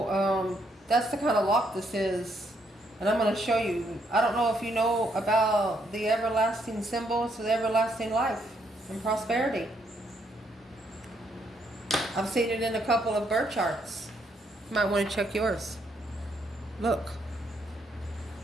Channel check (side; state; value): both; normal; correlation 0.73